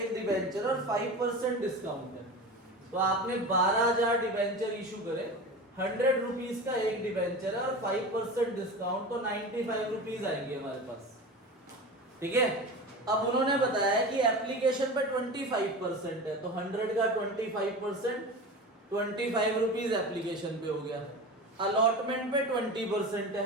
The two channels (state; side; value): normal; both; correlation 0.30